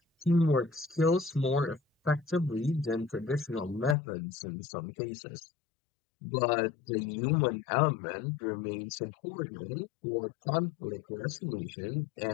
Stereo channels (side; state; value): right; drops out; at 4.0 s